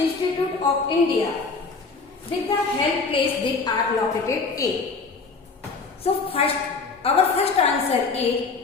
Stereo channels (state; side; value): quieter; right; 4.4 dB